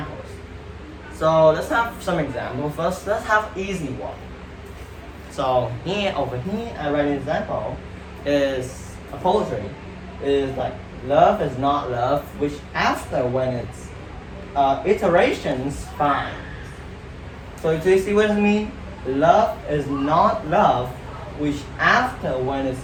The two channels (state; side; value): identical; both; correlation 1.00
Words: So let's have some examples first. Let's have easy one. So over here, I write an example. Is a poetry. Is like love is not love, which after when it's iterations fine. So do you see what I mean? Love is not love, which after when it's